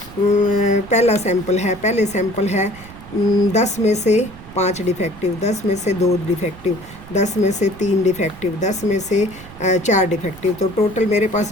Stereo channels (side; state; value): right; noise; rumble, 18 dB below the sound